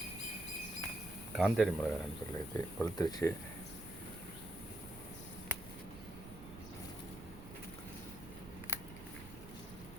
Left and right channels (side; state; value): right; noise; rumble, 14 dB below the sound